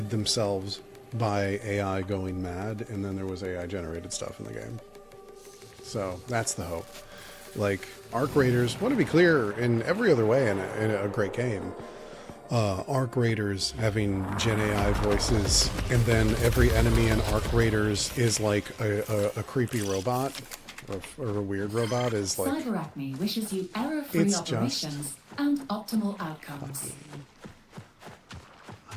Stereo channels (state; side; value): identical; both; correlation 1.00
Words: themselves by AI going mad, and then there was AI generated stuff in the game. So that's the hope. Like, Arc Raiders, want to be clear in every other way in a great game. Arc Raiders having Gen AI voices, and then every enemy in Arc Raiders is like a creepy robot or a weird robot is like. Cyberacme wishes you error-free It's operations just and optimal outcomes. funny. I